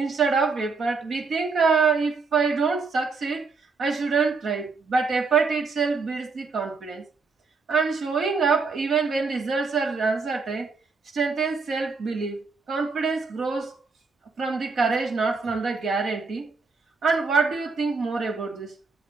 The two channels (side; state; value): left; quieter; 4.4 dB